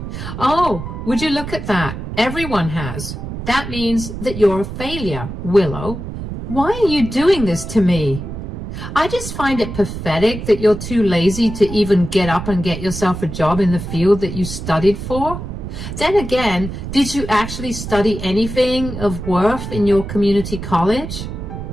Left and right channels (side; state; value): right; noise; rumble, 8 dB below the sound